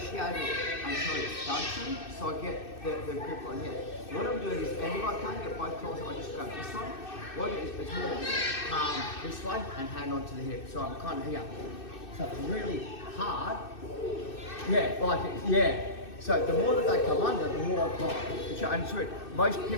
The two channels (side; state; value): right; late; 2.6 ms